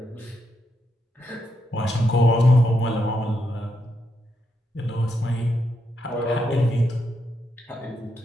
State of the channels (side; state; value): both; normal; correlation 0.81